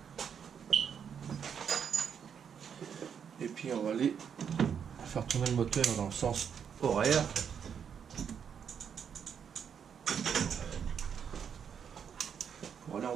Et puis on va aller faire tourner le moteur dans le sens horaire. Pour aller en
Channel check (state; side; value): quieter; left; 7.5 dB